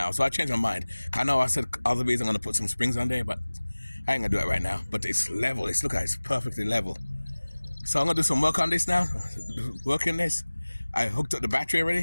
so I changed my mind. I know I said other days I'm going to put some springs on there, but I ain't going to do it right now. But it's level. Look at it, it's perfectly level. So I'm going to do some work on this now. Working this. I hooked up the battery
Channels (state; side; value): inverted; both; correlation -1.00